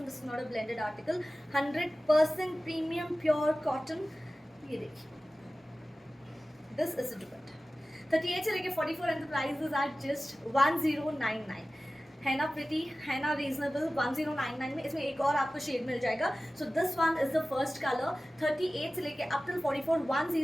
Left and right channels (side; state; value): both; normal; correlation 0.96